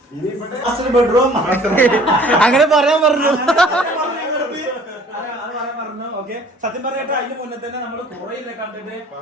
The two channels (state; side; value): normal; both; correlation 0.52